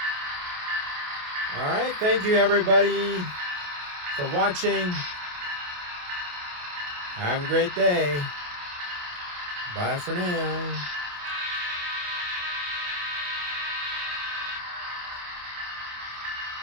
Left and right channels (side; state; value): left; late; 28 ms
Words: All right, thank you everybody for watching. Have a great day. Bye for now.